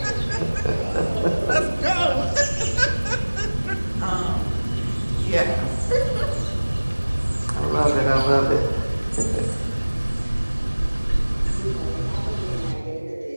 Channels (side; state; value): both; inverted; correlation -1.00